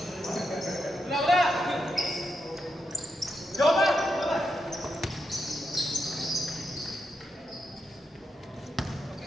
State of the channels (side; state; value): both; normal; correlation 0.84